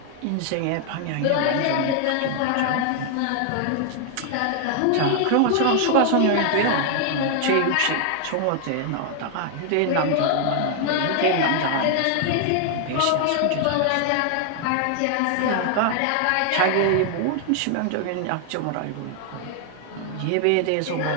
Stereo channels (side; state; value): both; different; correlation 0.00